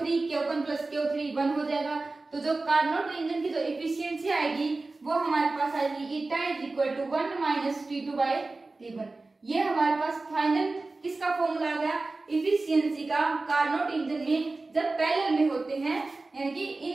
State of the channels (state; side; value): quieter; left; 3.4 dB